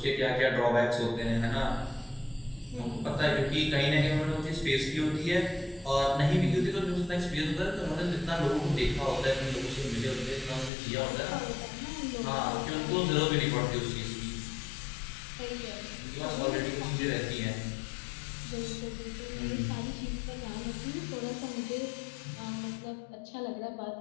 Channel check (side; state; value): right; drops out; at 10.7 s